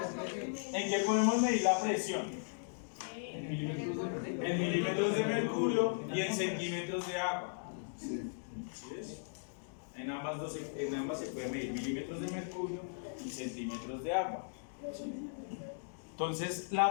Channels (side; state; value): right; silent; digital silence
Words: ¿En qué podemos medir la presión? En milímetros de mercurio y en centímetros de agua. ¿Sí es? En ambas se puede medir milímetros de mercurio y centímetros de agua. Entonces,